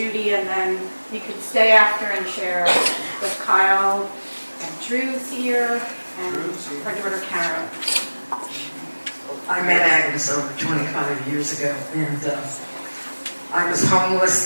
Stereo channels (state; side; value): inverted; both; correlation -1.00